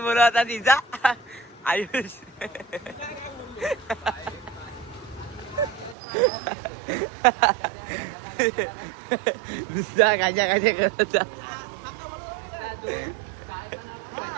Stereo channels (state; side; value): drops out; left; at 6.0 s